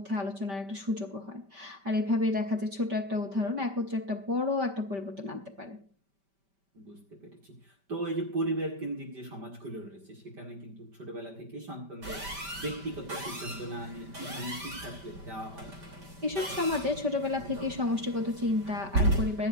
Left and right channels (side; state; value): left; late; 5.1 ms